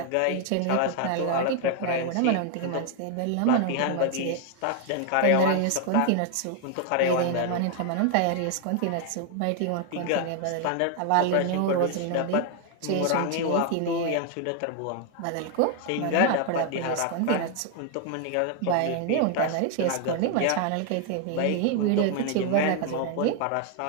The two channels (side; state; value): both; different; correlation 0.00